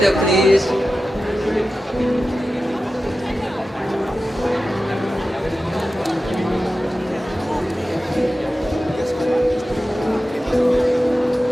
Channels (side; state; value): both; normal; correlation 0.93